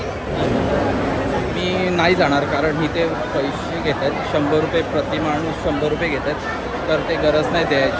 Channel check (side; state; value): both; identical; correlation 1.00